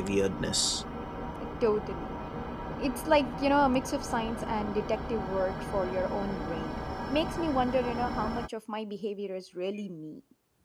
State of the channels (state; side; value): identical; both; correlation 1.00